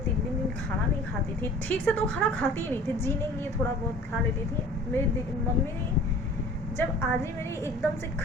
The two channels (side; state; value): both; normal; correlation 0.46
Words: दिन खाना नहीं खाती थी, ठीक से तो खाना खाती ही नहीं थी, जीने के लिए थोड़ा बहुत खा लेती थी। मेरी मम्मी जब आजी मेरी एकदम से